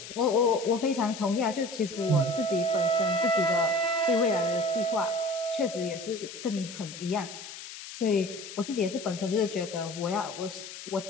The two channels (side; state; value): left; noise; hiss, 12 dB below the sound